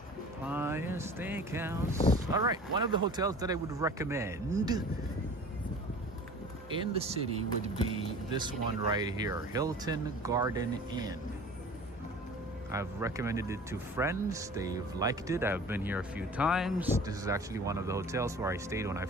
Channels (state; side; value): normal; both; correlation 0.43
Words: Fire Steakhouse. All right, one of the hotels that I would recommend in the city would be this one right here, Hilton Garden Inn. I've recommended it to friends. They've liked it. I've been here a few times. This is actually one of the hotels where I stayed when I